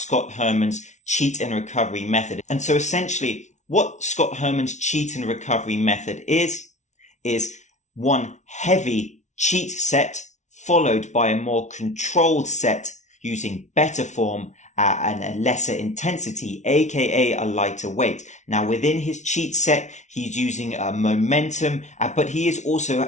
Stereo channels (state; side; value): late; right; 0.34 ms